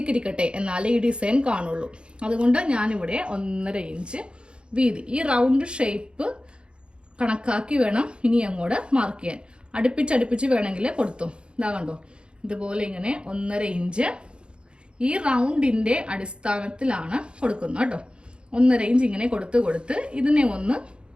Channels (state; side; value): late; left; 0.054 ms